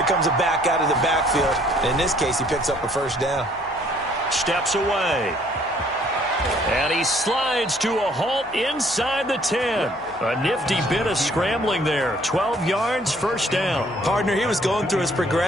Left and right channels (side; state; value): left; noise; hum, 25 dB below the sound